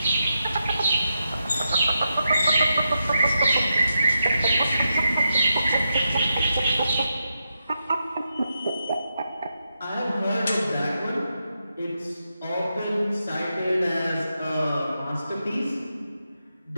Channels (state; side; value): inverted; both; correlation -0.86